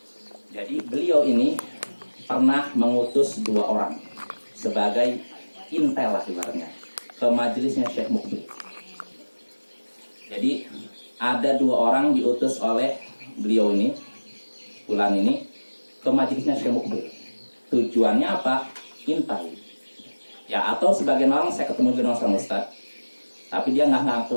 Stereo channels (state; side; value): inverted; both; correlation -1.00